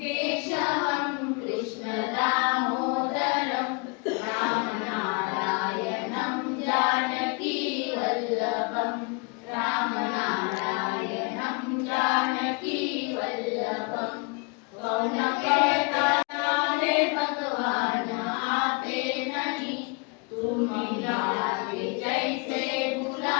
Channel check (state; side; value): quieter; right; 31.7 dB